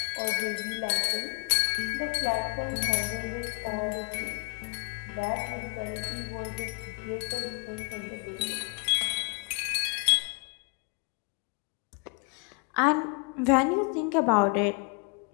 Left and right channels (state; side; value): quieter; right; 35.2 dB